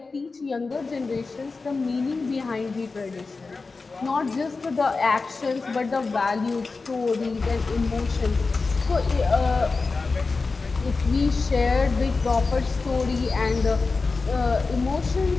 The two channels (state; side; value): quieter; right; 4.1 dB